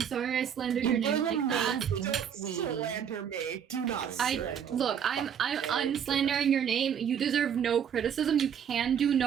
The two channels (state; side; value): quieter; left; 8.3 dB